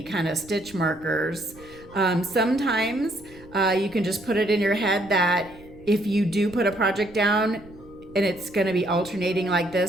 kind of stitch markers. Sometimes you can just put it in your head that if you do put a project down and it's going to be alternating like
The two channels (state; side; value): noise; right; rumble, 22 dB below the sound